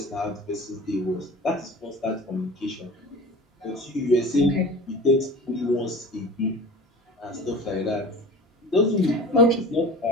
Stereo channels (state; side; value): normal; both; correlation 0.38